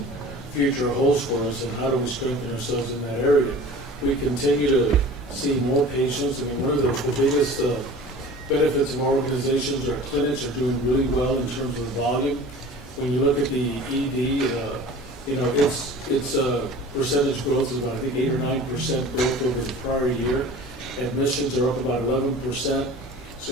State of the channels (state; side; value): normal; both; correlation 0.41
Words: future holds for us, and how do we strengthen ourselves in that area. We continue to see more patients. I mean, one of the biggest benefits of our organizations, our clinics are doing really well in terms of the volume. When you look at the ED, its percentage growth is about, I think, 8 or 9% growth over the prior year. Admissions are up about 11%.